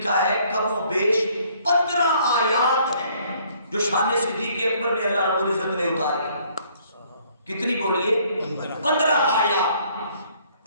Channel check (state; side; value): inverted; both; correlation -0.62